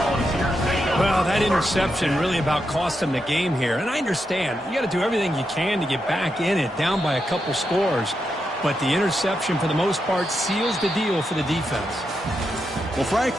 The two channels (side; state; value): both; normal; correlation 0.85